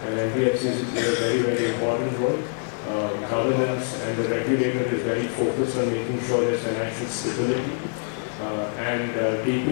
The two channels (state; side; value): silent; right; 62 dB below the other